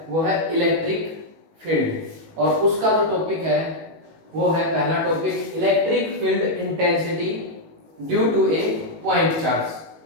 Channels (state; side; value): late; left; 18 ms